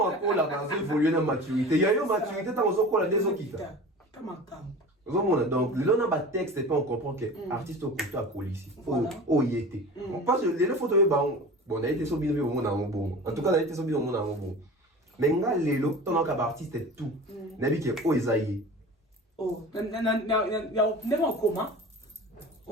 akola ba évoluer na maturité ya yo maturité tant ozokola des okita donc le long de texte et pas on comprend que artiste au côté à ici oh y était on passe les photos bon on a été sur bien au monde bon en tout cas on a été sur bien au monde bon mais nga lelo ton artiste est tout nabi que oh isaïe oh never en commun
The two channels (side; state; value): both; normal; correlation 0.36